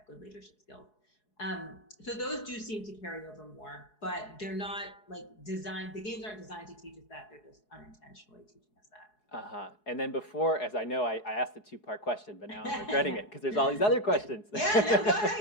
good leadership skills. So those do seem to carry over more, but they're not like designed. The games aren't designed to teach us that; they're just unintentionally teaching us that. Uh-huh. And then before, as I know, I asked a two-part question, but now I'm regretting it because there's all these other questions. Yeah, no, go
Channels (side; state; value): right; late; 4.7 ms